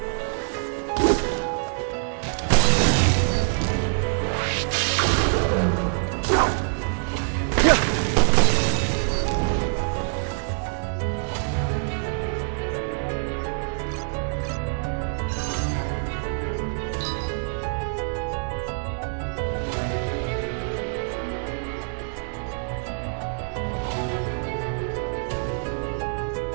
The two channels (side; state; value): left; silent; 62 dB below the other